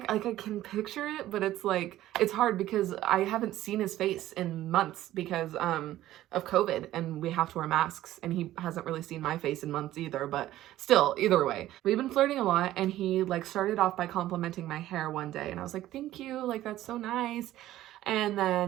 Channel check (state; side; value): quieter; left; 14.3 dB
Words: Like, I can picture it, but it's like, it's hard because I haven't seen his face in months because of COVID, and we have to wear masks, and he hasn't really seen my face in months either. But still, either way, we've been flirting a lot, and he like started off by complimenting my hair one day, and I was like, thank you, like, that's so nice. And